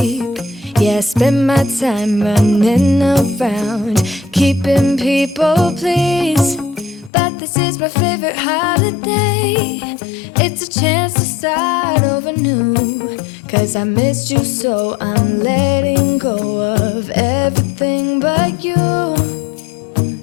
Yeah, I spend my time running around, keeping people pleased. But this is my favorite holiday. It's a chance to start over new. Cause I missed you, so I'm letting go of everything but you.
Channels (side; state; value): right; drops out; at 7.1 s